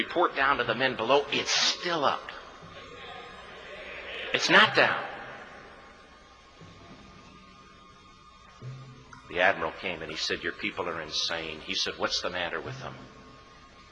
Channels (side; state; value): both; identical; correlation 1.00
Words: down to the men below, it's still up. It's not down. The admiral came and he said, your people are insane. He said, what's the matter with them?